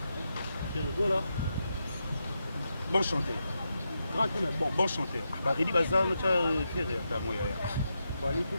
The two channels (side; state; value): both; inverted; correlation -0.86